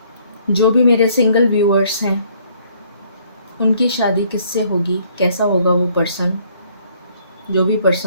जो भी मेरे single viewers हैं उनकी शादी किससे होगी, कैसा होगा वो पर्सन, जो भी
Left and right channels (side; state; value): both; inverted; correlation -0.63